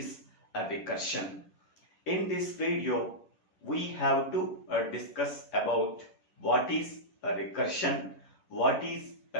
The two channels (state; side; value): late; right; 11 ms